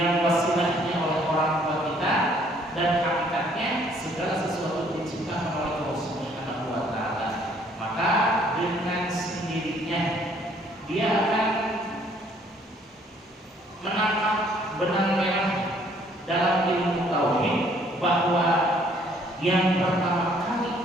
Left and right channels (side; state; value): both; normal; correlation 0.62